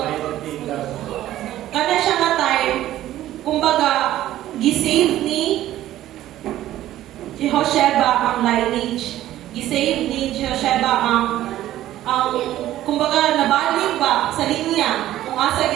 kada siya nga time, kumbaga, gisave ni Jehosheba ang lineage. Gisave ni Jehosheba ang kumbaga, nabalik ba sa linya kung asa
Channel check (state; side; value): quieter; left; 13.7 dB